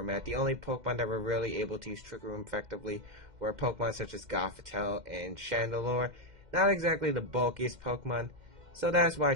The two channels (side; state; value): left; late; 2.1 ms